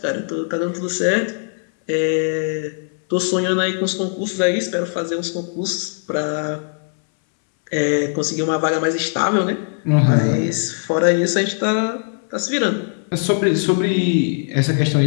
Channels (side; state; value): right; silent; 62 dB below the other